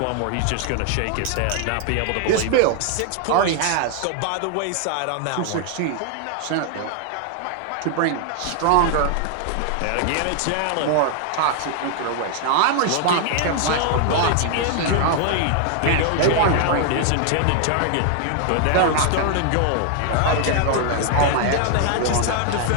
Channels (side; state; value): both; different; correlation 0.00